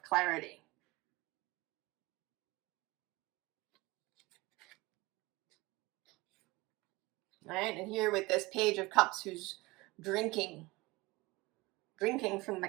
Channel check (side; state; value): left; quieter; 21.9 dB